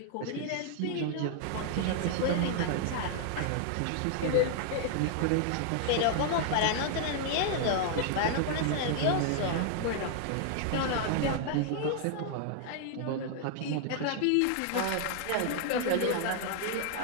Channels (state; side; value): different; both; correlation 0.00